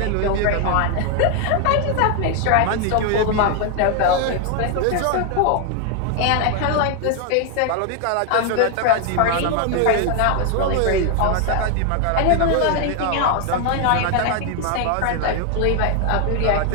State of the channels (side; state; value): both; different; correlation 0.00